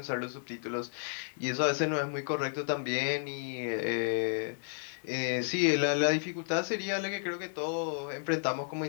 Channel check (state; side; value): silent; right; digital silence